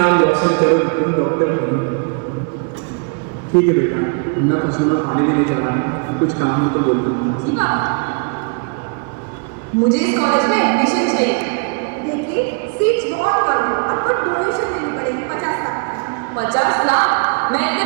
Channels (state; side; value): quieter; left; 36.6 dB